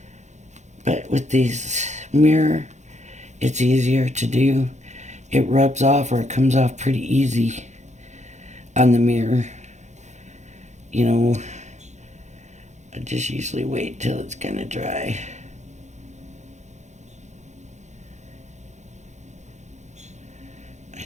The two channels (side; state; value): left; late; 0.34 ms